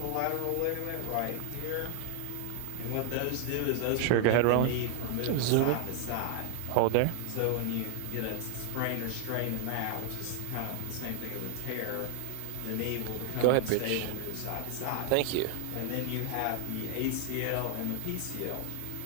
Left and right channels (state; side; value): different; both; correlation 0.00